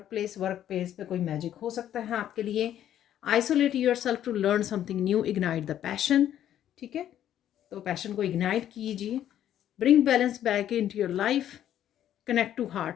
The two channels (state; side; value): quieter; right; 11.1 dB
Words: workplace पे कोई मैजिक हो सकता है आपके लिए। Isolate yourself to learn something new, ignite the passion, ठीक है, तो पैशन को इग्नाइट कीजिए। Bring balance back into your life, connect to